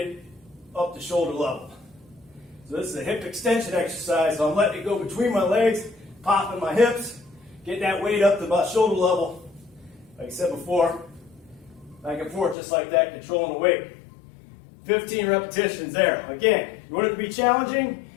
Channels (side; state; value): right; drops out; at 12.6 s